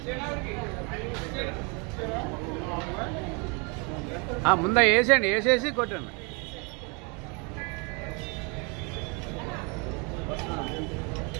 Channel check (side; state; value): left; quieter; 32.4 dB